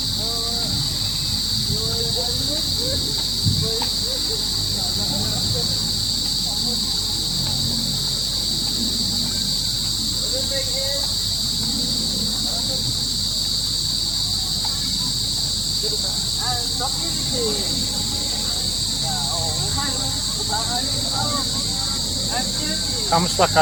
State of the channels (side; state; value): right; noise; hum, 8 dB below the sound